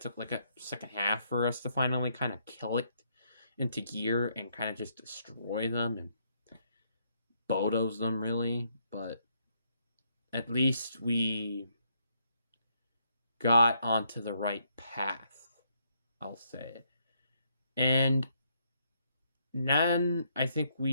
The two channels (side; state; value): both; inverted; correlation -0.74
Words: like a second half for us to finally kind of kill it into gear and kind of just destroy them and Bodos them, really. But at least we got onto the right path, I'll say. And then I think